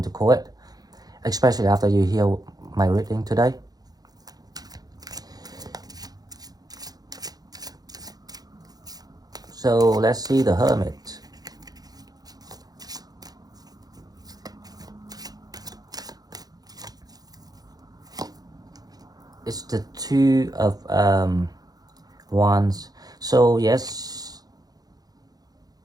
to call it, especially after you hear my reading today. So let's see the Hermit. It's the Two of Wands. So yes,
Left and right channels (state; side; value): late; left; 0.19 ms